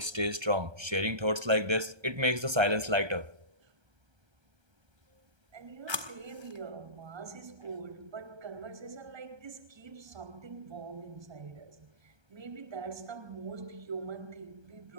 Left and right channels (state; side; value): late; left; 1.3 ms